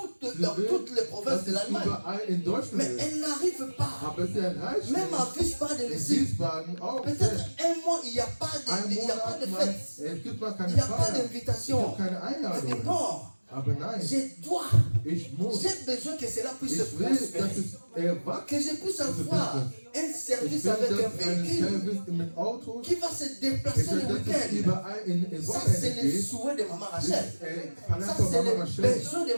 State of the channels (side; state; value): both; inverted; correlation -1.00